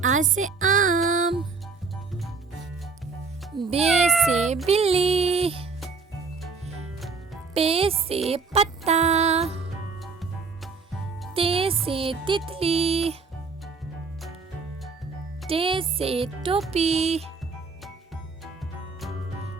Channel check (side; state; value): left; quieter; 4.6 dB